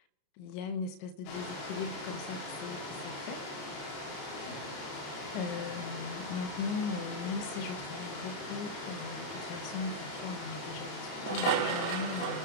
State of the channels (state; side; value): late; right; 33 ms